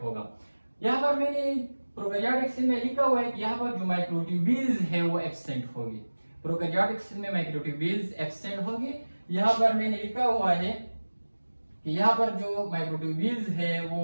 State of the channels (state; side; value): inverted; both; correlation -1.00